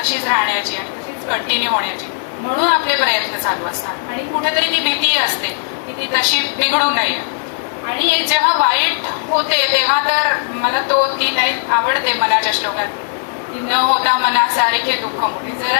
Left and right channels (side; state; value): right; silent; 68 dB below the other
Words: राहण्याची आणि तशीच कंटिन्यू होण्याची म्हणून आपले प्रयत्न चालू असतात. आणि कुठेतरी ती भीती असते की ती तशी बिघडू नये. आणि जेव्हा वाईट होते तेव्हा तर मला ती लाईफ आवडते मनाच्या श्लोकात की न होता मनासारखे दुःख मोठे.